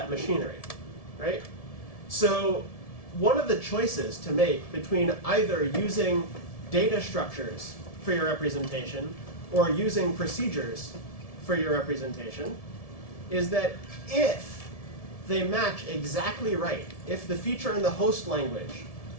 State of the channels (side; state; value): right; late; 1.7 ms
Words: machinery, right? So one of the choices to make between either using data structures for your representation or using procedures for your representation is that if they match exactly right, if the feature in the host language